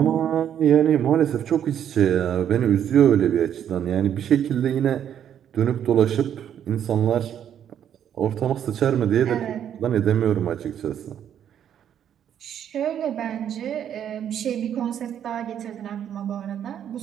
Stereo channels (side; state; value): left; quieter; 9.5 dB